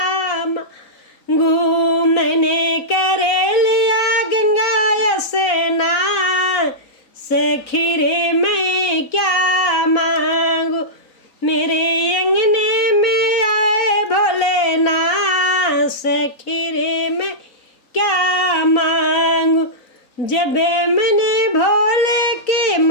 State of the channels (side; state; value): right; late; 4.0 ms